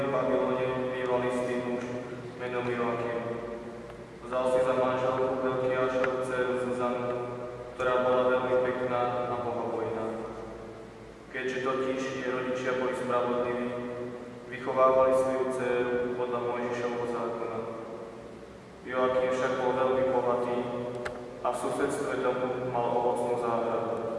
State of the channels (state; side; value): identical; both; correlation 1.00